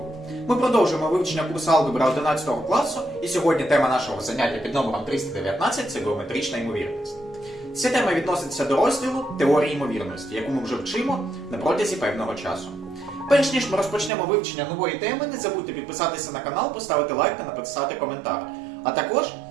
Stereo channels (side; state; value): left; drops out; at 14.1 s